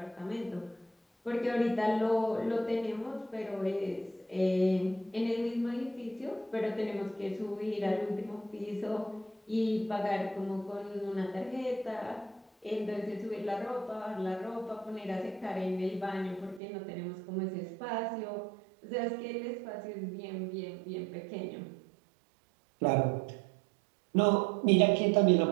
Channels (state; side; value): drops out; left; at 16.6 s